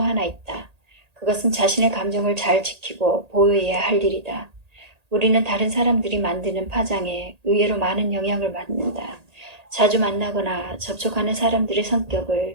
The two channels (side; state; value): left; late; 1.8 ms